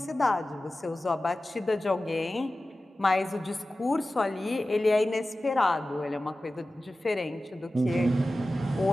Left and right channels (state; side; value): normal; both; correlation 0.95